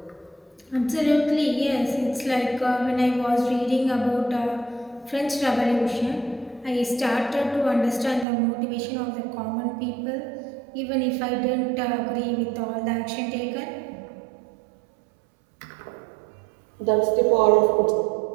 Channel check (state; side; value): drops out; left; at 8.2 s